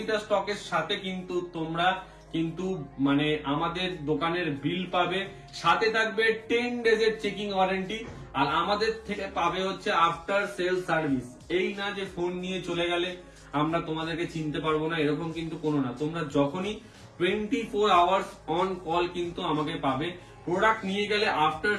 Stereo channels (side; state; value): both; identical; correlation 1.00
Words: স্টকের সাথে কিন্তু তোমরা কিন্তু মানে আমাদের দোকানের বিল পাবে, সাথে থাকবে 10 ডেজের চেকিং ওয়ারেন্টি, আর আমাদের থেকে পাবে হচ্ছে আফটার সেল সার্ভিস। এই না যে ফোন নিয়ে চলে গেলে আমরা তোমাদেরকে চিনতে পারবো না, এরকম কিন্তু কোনো না। তোমরা যখনই 24 আওয়ার্স অন কল কিন্তু আমাকে পাবে। প্রোডাক্ট নিয়ে গেলে আফটার